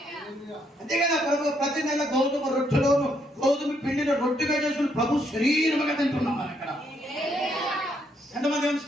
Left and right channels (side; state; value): both; normal; correlation 0.73